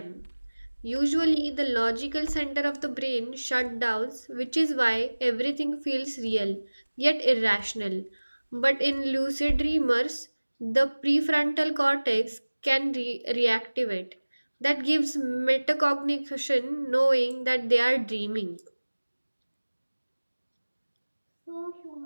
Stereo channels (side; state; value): both; inverted; correlation -1.00